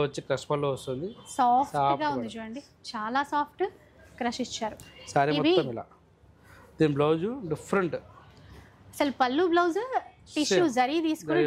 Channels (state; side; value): identical; both; correlation 1.00